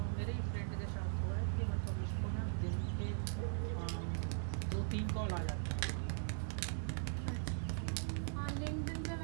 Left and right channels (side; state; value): left; silent; digital silence